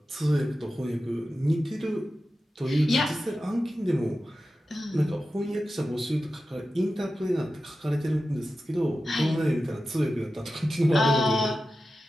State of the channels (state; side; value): normal; both; correlation 0.93